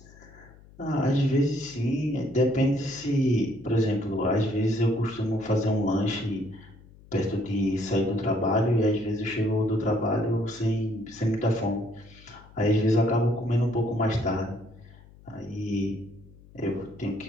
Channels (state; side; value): noise; left; hum, 23 dB below the sound